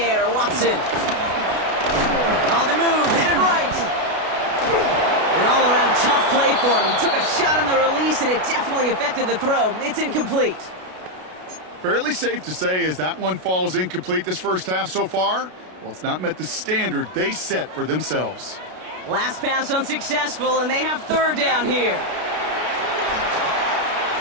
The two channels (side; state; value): left; late; 33 ms